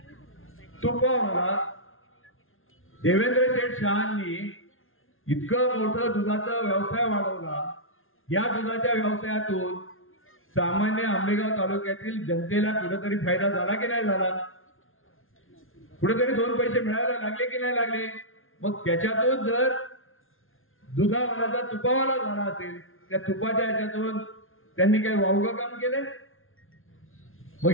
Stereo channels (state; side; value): late; right; 0.60 ms